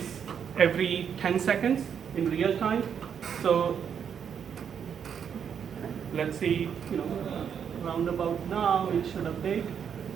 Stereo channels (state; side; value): quieter; left; 7.7 dB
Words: every 10 seconds in real time. So let's see, round about now it should update,